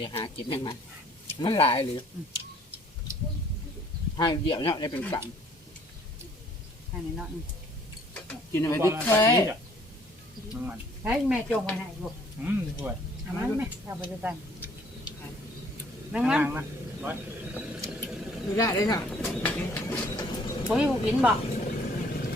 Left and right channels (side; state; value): both; normal; correlation 0.60